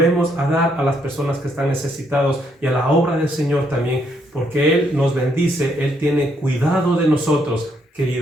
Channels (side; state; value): both; normal; correlation 0.73